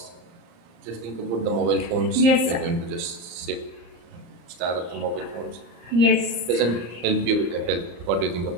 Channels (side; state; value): left; late; 34 ms